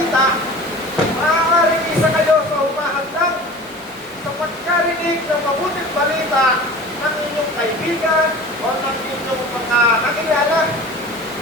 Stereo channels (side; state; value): both; normal; correlation 0.38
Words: maaaring isa kayo sa humahandang sa pagkarinig ng mabuting balita ng inyong kaibigan o ng inyong mga nakilala.